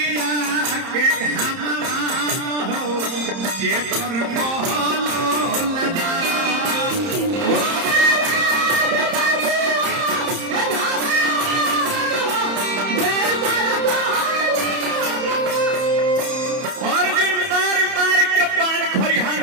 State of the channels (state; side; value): late; left; 30 ms